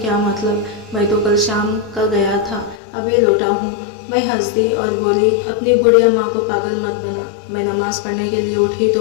मतलब, मैं तो कल शाम का गया था, अभी लौटा हूँ। मैं हंस दी और बोली, अपनी बुढ़िया माँ को पागल मत बना। मैं नमाज़ पढ़ने के लिए उठी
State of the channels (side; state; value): right; drops out; at 2.8 s